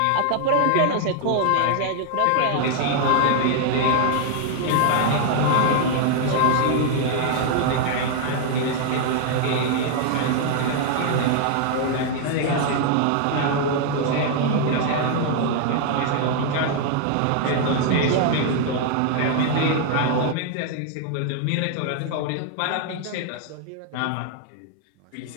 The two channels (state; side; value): different; both; correlation 0.00